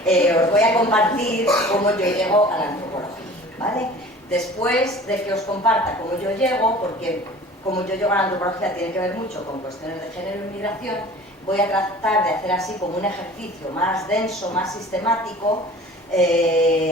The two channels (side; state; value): both; normal; correlation 0.44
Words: voy a compartir cómo yo llego a la antropología, ¿vale? Después de que os comparta cómo yo llego, porque cómo yo llego a la antropología tiene que ver mucho con cuestiones de género y migración, voy a tratar de hacer así como un ejercicio más denso, más sistemático,